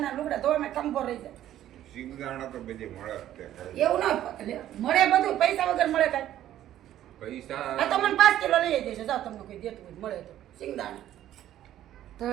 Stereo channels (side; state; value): left; quieter; 12.4 dB